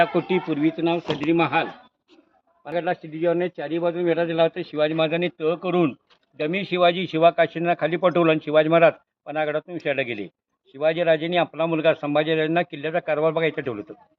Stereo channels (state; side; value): identical; both; correlation 1.00